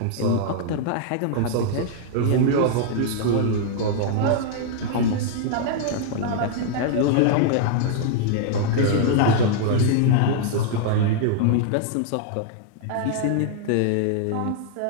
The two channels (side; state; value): both; different; correlation -0.01